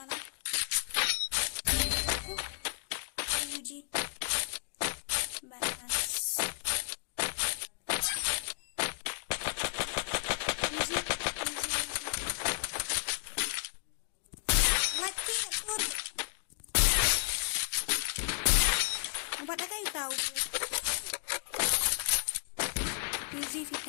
Uji. Banas. Easy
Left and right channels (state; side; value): silent; right; digital silence